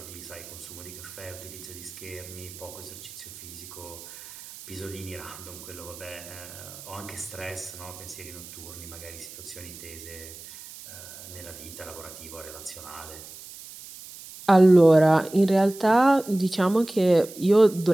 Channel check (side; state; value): right; noise; hiss, 15 dB below the sound